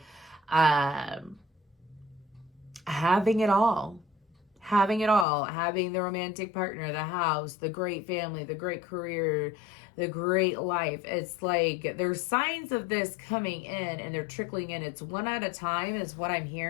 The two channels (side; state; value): right; drops out; at 5.2 s